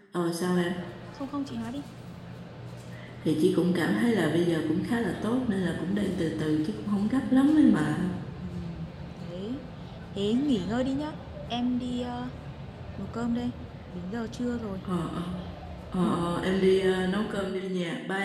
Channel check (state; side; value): identical; both; correlation 1.00